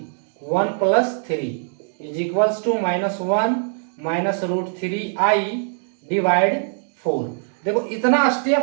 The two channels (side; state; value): left; silent; digital silence